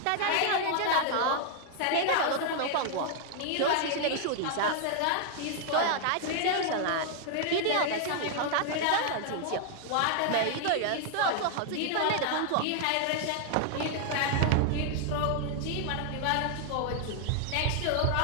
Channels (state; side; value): different; both; correlation 0.00